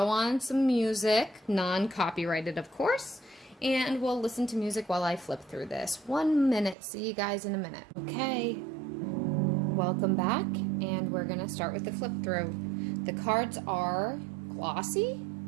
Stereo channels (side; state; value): left; drops out; at 6.8 s